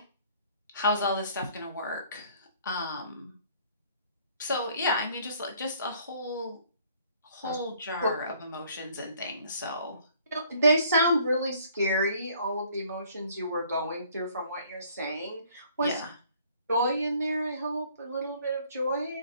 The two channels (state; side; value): inverted; both; correlation -0.59